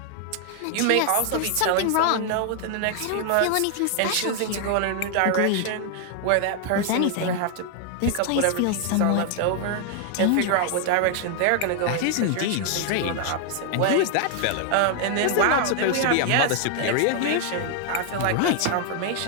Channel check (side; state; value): both; different; correlation 0.00